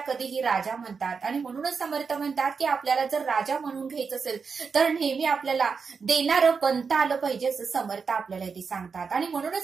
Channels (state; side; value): quieter; left; 5.4 dB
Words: कधीही राजा म्हणतात. आणि म्हणूनच समर्थ म्हणतात की आपल्याला जर राजा म्हणून घ्यायचं असेल तर नेहमी आपल्याला देणारं बनता आलं पाहिजे असं समर्थ आपल्याला ते सांगतात. आणि